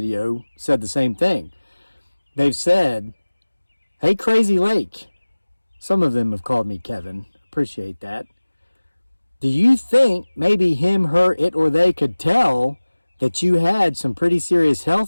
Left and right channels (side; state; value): both; inverted; correlation -1.00